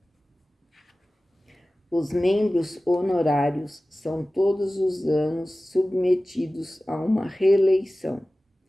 Os membros honorários são todos os anos submetidos a uma reeleição.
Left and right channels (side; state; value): both; normal; correlation 0.97